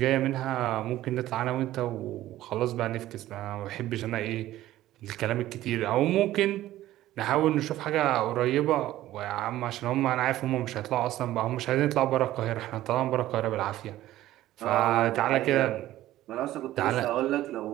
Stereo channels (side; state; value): left; quieter; 14.7 dB